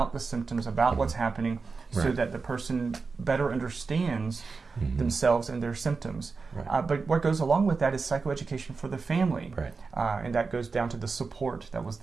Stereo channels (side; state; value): left; quieter; 4.5 dB